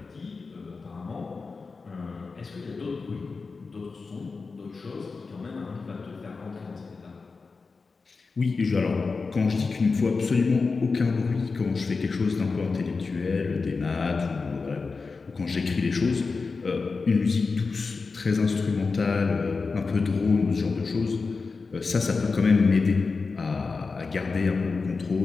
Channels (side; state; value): right; quieter; 4.4 dB